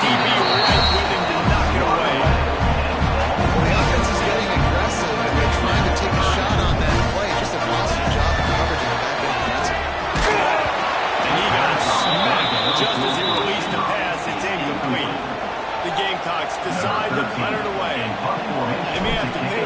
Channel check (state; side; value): identical; both; correlation 1.00